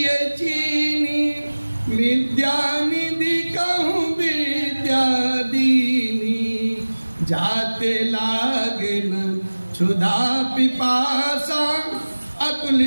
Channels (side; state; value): both; inverted; correlation -1.00